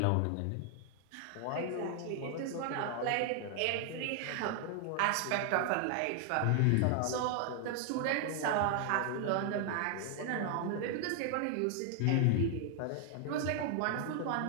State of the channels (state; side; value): different; both; correlation 0.00